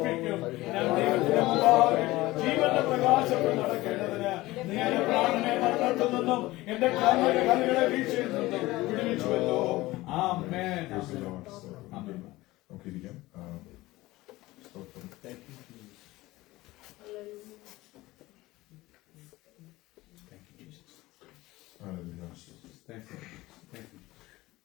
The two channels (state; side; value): quieter; right; 18.9 dB